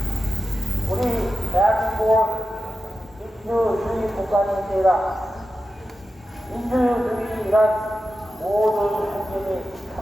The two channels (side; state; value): both; normal; correlation 0.92